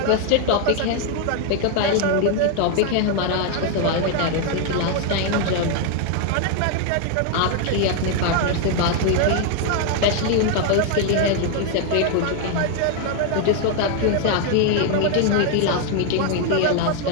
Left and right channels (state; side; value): different; both; correlation 0.01